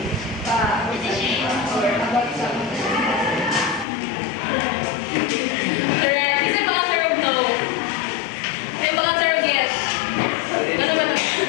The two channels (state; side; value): drops out; right; at 3.9 s